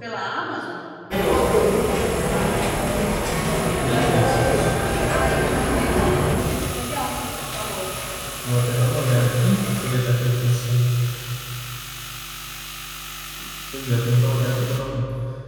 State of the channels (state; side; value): identical; both; correlation 1.00